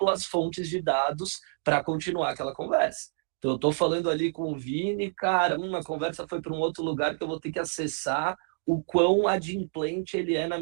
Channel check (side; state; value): left; silent; digital silence